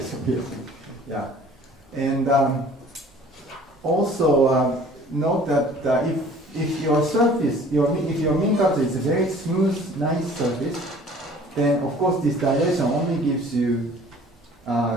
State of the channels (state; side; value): normal; both; correlation 0.50